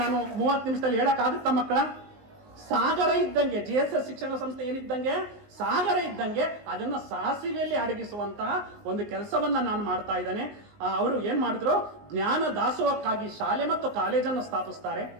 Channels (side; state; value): left; late; 19 ms